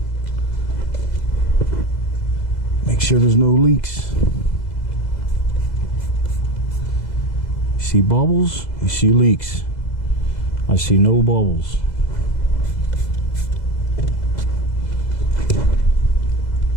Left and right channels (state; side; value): late; right; 2.0 ms